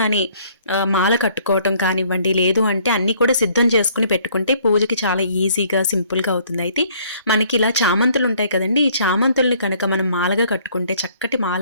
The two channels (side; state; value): both; inverted; correlation -0.61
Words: మాల కట్టుకోవటం కానివ్వండి, లేదు అంటే అన్నీ కూడా సిద్ధం చేసుకుని పెట్టుకుంటే పూజకి చాలా ఈజీగా, సింపుల్గా అవుతుంది. అయితే మనకి ఇలా చామంతులు ఉంటాయి కదండి, ఈ చామంతుల్ని కనుక మనం మాలగా కట్టుకుంటే చక్కటి మాల